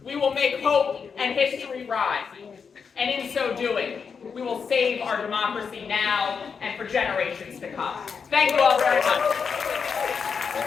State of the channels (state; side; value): quieter; right; 6.0 dB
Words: We will make hope and history rise. And in so doing, we will save our democracy now and for generations to come. Thank you all very much.